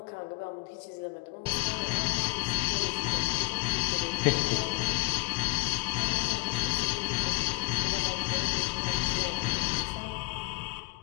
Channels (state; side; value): quieter; right; 21.8 dB